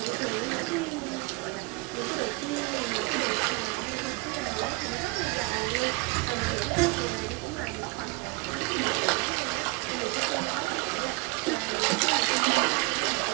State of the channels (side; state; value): left; quieter; 26.5 dB